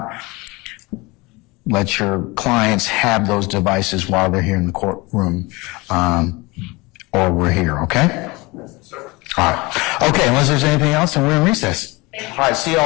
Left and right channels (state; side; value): quieter; right; 24.2 dB